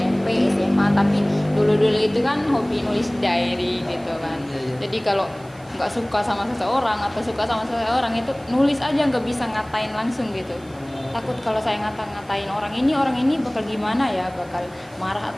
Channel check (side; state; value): right; noise; hiss, 27 dB below the sound